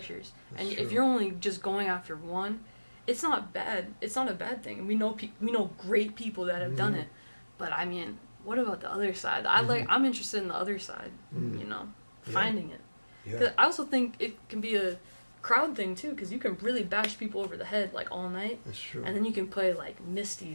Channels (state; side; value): inverted; both; correlation -1.00